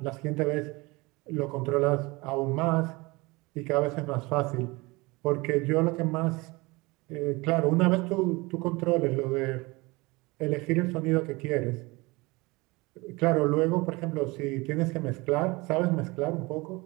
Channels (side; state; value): left; quieter; 24.0 dB